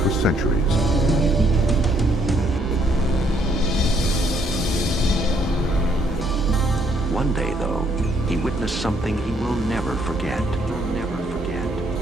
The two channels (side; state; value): both; normal; correlation 0.69